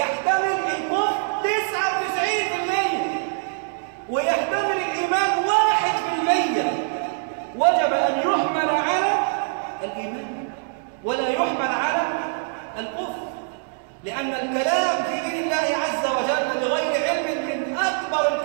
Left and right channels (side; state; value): left; silent; digital silence